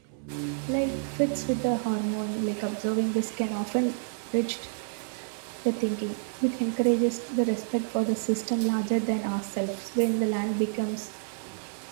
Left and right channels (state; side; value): silent; left; 59 dB below the other